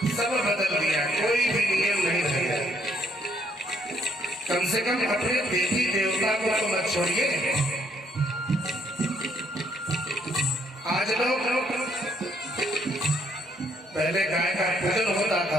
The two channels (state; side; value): normal; both; correlation 0.69